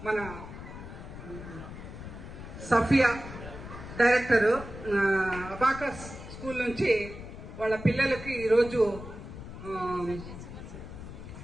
మన సఫియా డైరెక్టర్ అబాకస్ స్కూల్ నుంచి వాళ్ళ పిల్లలకి ఈరోజు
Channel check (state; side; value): noise; left; rumble, 12 dB below the sound